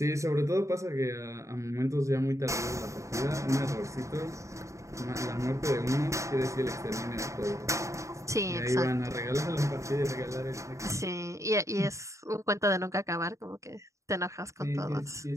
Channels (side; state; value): left; late; 0.15 ms